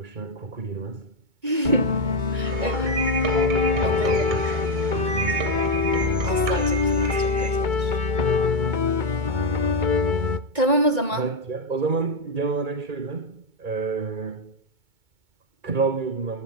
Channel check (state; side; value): late; left; 2.2 ms